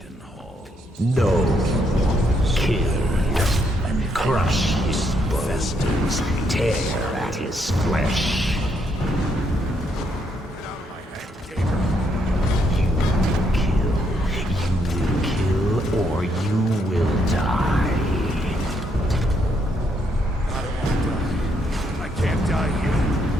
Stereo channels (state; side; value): normal; both; correlation 0.74